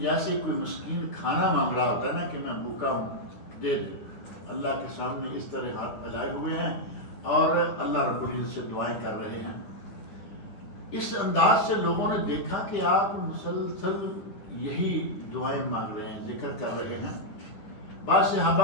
کوئی مسکین کھانا مانگ رہا ہوتا ہے نا کہ میں بھوکا ہوں دے دے، اللہ کے سامنے اس طرح ہاتھ پھیلائے ہوئے ہیں اور اللہ رب العزت سے دعائیں کر رہے ہیں۔ اس انداز سے لوگوں نے دیکھا کہ آپ مسلسل یہی دعائیں مانگ رہے ہیں، ذکر کر رہے ہیں۔ بعض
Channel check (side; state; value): right; late; 9.7 ms